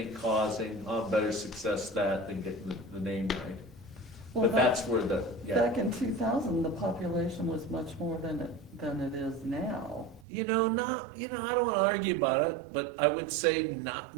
causing, better success that than getting the name right. Well, But that's where back in 2000, the population was much more than it is now. I don't want to argue about it, but I would say not,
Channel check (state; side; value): drops out; left; at 10.2 s